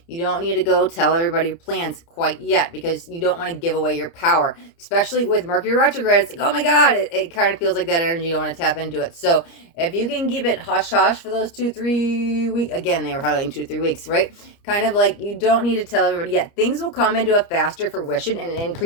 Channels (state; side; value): late; right; 29 ms